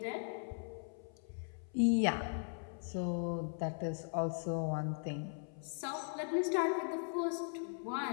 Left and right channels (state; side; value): silent; right; 52 dB below the other